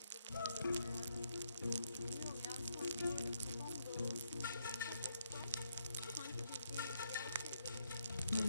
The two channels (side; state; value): both; inverted; correlation -0.75